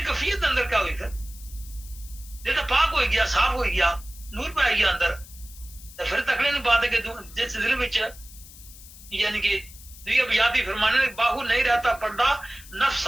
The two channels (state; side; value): noise; left; hiss, 19 dB below the sound